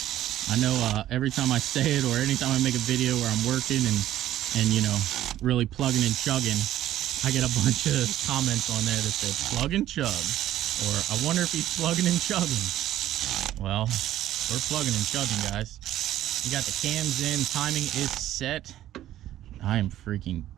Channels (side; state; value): left; quieter; 13.0 dB